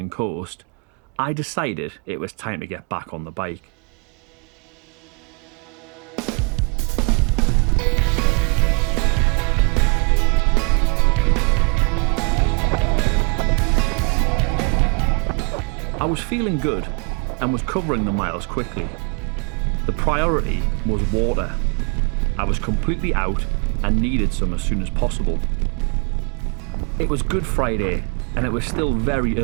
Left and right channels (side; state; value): left; quieter; 34.9 dB